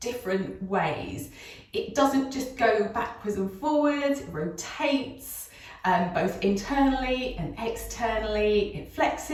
different ways. It doesn't just go backwards and forwards, it rotates both internally and externally, it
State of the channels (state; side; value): identical; both; correlation 1.00